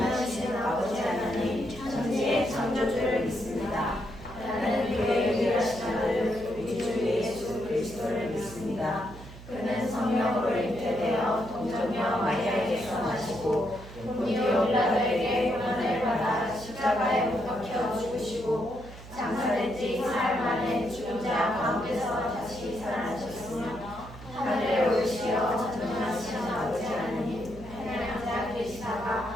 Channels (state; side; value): noise; right; hum, 16 dB below the sound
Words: 아버지 하나님 천지의 창조주를 믿습니다. 나는 그의 유일하신 아들 우리 주 예수 그리스도를 믿습니다. 그는 성령으로 잉태되어 동정녀 마리아에게서 나시고 본디오 빌라도에게 고난을 받아 십자가에 못 박혀 죽으시고 장사된 지 사흘 만에 죽은 자 가운데서 다시 살아나셨으며 하늘에 올리시어 전능하신 아버지 하나님 하나님 자